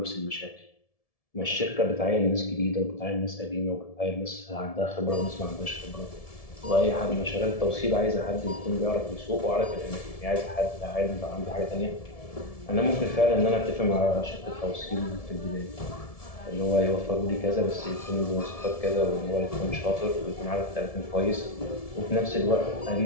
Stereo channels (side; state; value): right; late; 1.7 ms